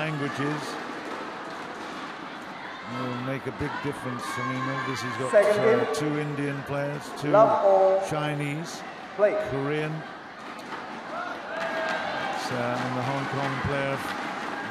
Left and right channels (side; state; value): both; identical; correlation 1.00